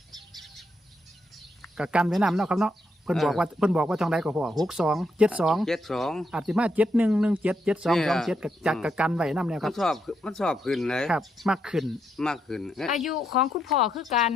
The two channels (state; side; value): normal; both; correlation 0.79